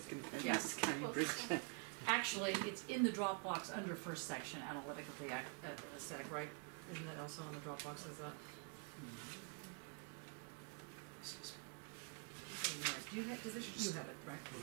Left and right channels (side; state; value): left; quieter; 34.6 dB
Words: going to go yes. back to Cambridge. Actually, it's in the Dropbox under first section, analytic of the aesthetic, right? Isn't that also on the Dropbox? Is that? Do you have, you have it, right?